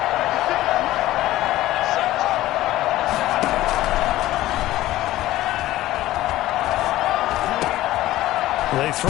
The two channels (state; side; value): quieter; right; 15.6 dB